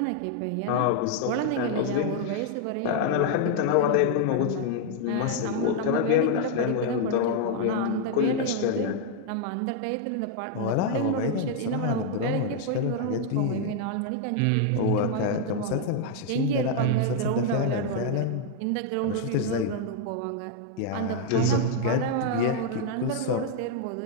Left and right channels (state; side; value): different; both; correlation 0.00